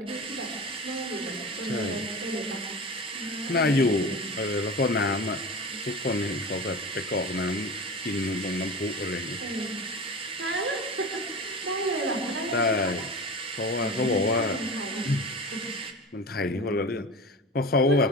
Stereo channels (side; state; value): both; normal; correlation 0.31